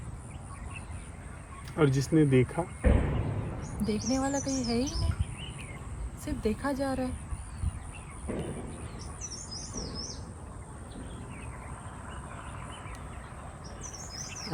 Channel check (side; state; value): both; identical; correlation 1.00